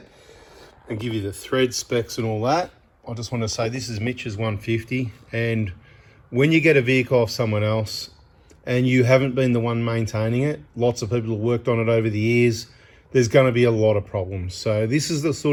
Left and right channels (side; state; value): both; identical; correlation 1.00